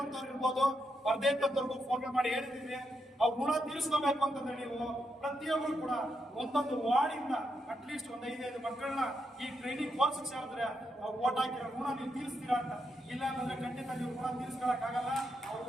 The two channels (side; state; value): both; normal; correlation 0.82